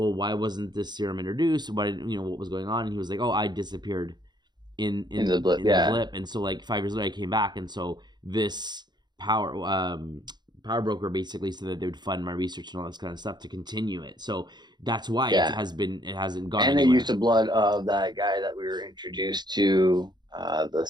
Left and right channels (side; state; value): left; late; 0.21 ms